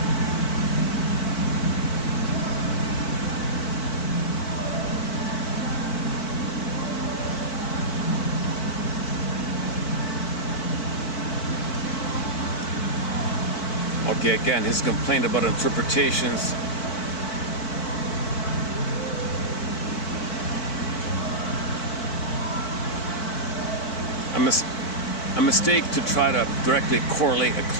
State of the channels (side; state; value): right; late; 4.5 ms